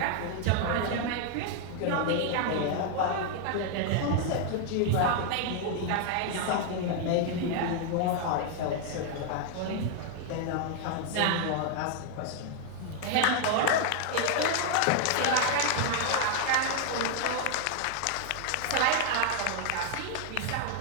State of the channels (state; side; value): different; both; correlation 0.00